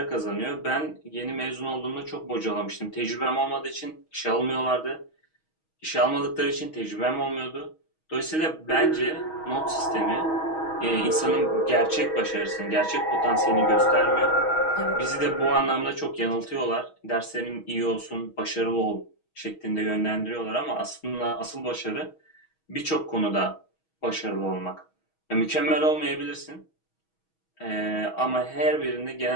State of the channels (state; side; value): late; right; 6.3 ms